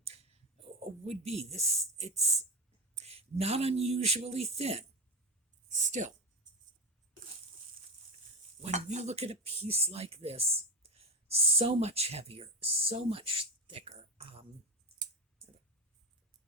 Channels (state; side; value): normal; both; correlation 0.18